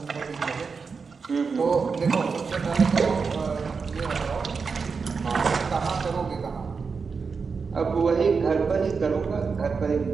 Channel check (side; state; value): left; quieter; 5.2 dB